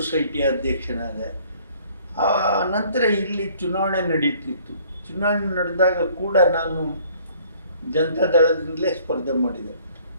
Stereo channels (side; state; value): both; inverted; correlation -0.57